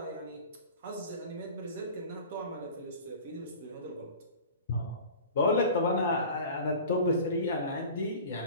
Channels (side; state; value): both; inverted; correlation -0.39